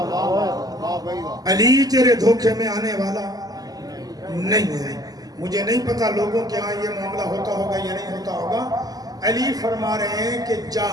علی تیرے دھوکے میں آنے والا نہیں ہے۔ مجھے نہیں پتا لوگوں کے ہاں یہ معاملہ ہوتا ہوگا یا نہیں ہوتا ہوگا۔ علی فرما رہے ہیں کہ جا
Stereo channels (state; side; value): late; left; 0.18 ms